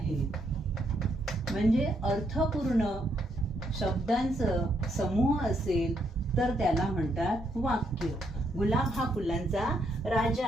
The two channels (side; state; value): both; normal; correlation 0.75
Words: म्हणजे अर्थपूर्ण शब्दांचा समूह असेल तर त्याला म्हणतात वाक्य. गुलाब हा फुलांचा राजा